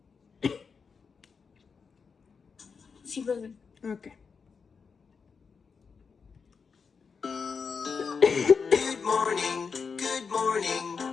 Sí, profe. Okay. Good morning,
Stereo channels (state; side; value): quieter; right; 5.5 dB